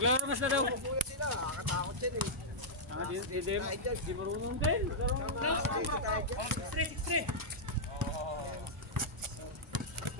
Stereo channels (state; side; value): normal; both; correlation -0.09